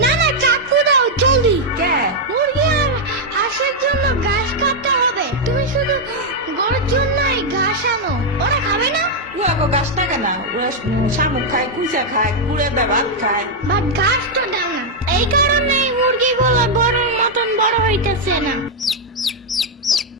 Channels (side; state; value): both; normal; correlation -0.01